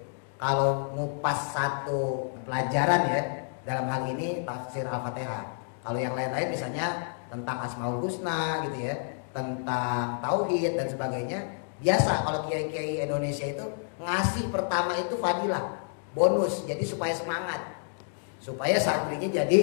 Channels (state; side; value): silent; right; digital silence